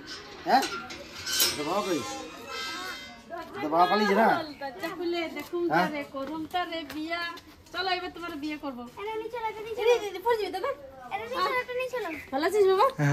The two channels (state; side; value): identical; both; correlation 1.00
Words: হ্যাঁ, তো বাবা কই? তো বাবা পালিয়েছে না? দরজা খুলে দেখুন তারে, করুন তারে বিয়া। চলো এবার তোমার বিয়ে করবো। ভালো আছিস বাবা?